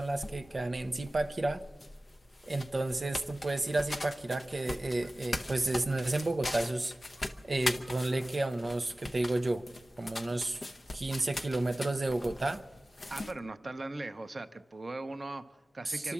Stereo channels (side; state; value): both; normal; correlation 0.97